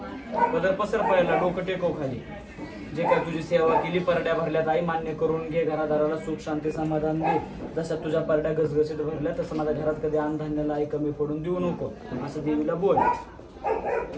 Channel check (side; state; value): both; identical; correlation 1.00